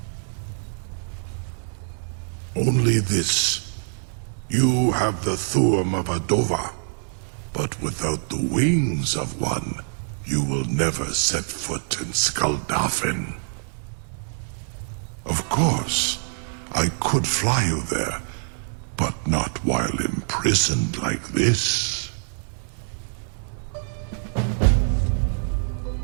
Only this. You have the Thuum of a Dova, but without the wings of one, you will never set foot in Skuldafn. Of course, I could fly you there, but not while imprisoned like this.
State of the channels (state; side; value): silent; left; 62 dB below the other